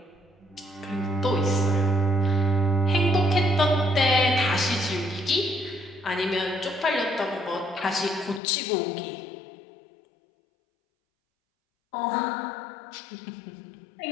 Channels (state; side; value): drops out; right; at 8.4 s